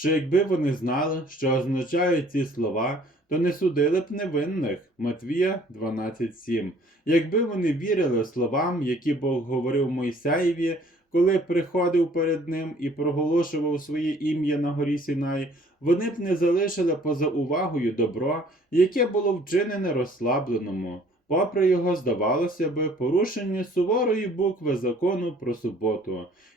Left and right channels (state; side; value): normal; both; correlation 0.56